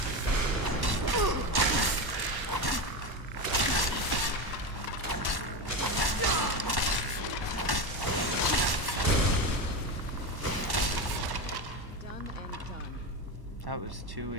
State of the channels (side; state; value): left; late; 1.1 ms